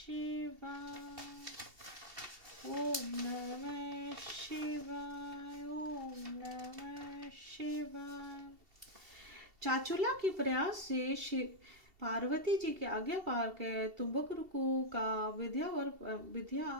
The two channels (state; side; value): late; left; 2.7 ms